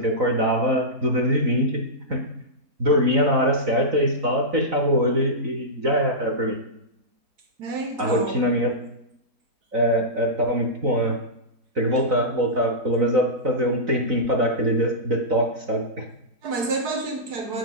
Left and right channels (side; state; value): left; late; 4.7 ms